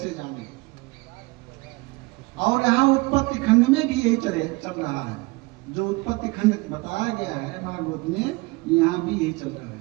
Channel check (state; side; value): quieter; left; 24.4 dB